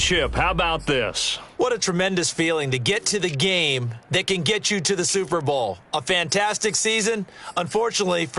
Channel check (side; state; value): both; identical; correlation 1.00